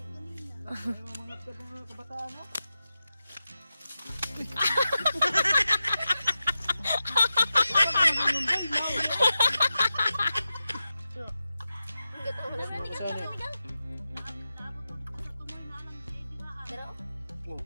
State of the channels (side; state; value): both; inverted; correlation -0.91